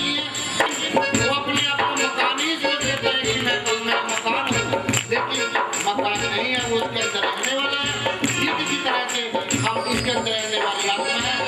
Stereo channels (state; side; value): identical; both; correlation 1.00